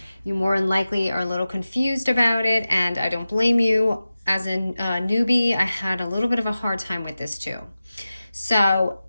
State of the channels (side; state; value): both; inverted; correlation -0.95